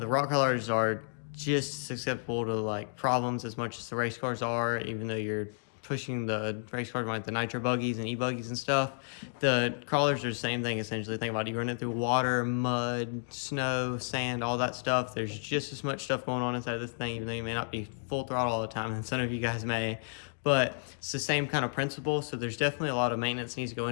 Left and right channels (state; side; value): silent; right; digital silence